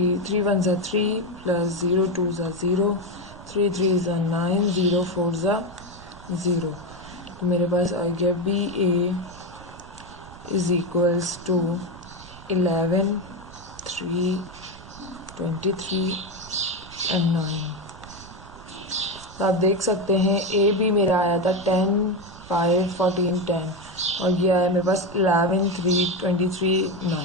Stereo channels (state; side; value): noise; right; rumble, 18 dB below the sound